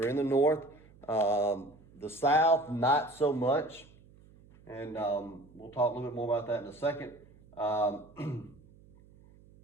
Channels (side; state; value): right; noise; hum, 25 dB below the sound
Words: in the North. The South, not so much. And we'll talk a little bit more about that in a second. The